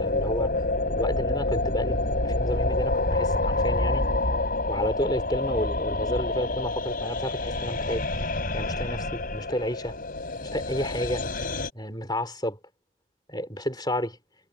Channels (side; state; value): both; normal; correlation 0.20